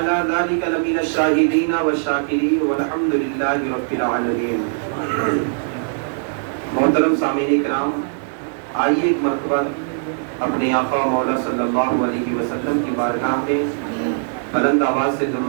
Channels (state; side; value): silent; left; digital silence